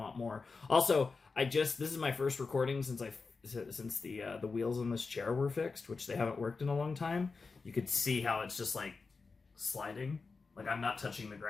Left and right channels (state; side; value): quieter; right; 4.4 dB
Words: more. Also, this is my first recording since the wheels on this chair were fixed, which they haven't worked in a long time. You could see how it's just, like, sliding. Like, I'm not touching the